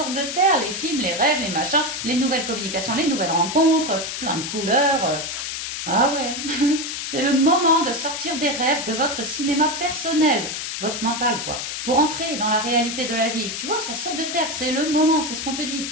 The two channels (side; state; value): left; noise; hiss, 5 dB below the sound